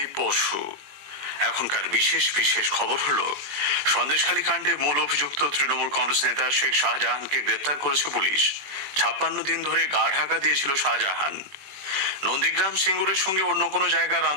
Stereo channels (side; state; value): left; late; 21 ms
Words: বসু। এখনকার বিশেষ বিশেষ খবর হলো, সন্দেশখালী কাণ্ডে মূল অভিযুক্ত তৃণমূল কংগ্রেস নেতা শেখ শাহজাহানকে গ্রেপ্তার করেছে পুলিশ। 56 দিন ধরে গা ঢাকা দিয়েছিল শাহজাহান। নন্দীগ্রাম সিঙ্গুরের সঙ্গে অন্য কোনো জায়গার